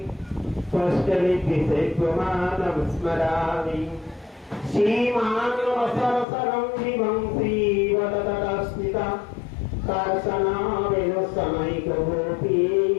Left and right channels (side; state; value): right; drops out; at 6.2 s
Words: त्वष्टलिभिषेक्वमानं स्मरामि श्रीमानवसरसरं विभं श्रीवदतस्मिता कार्शनावेणुसमैकगोपी